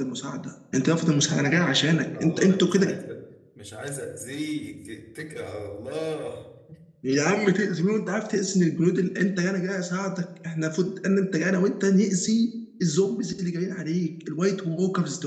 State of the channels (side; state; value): both; identical; correlation 1.00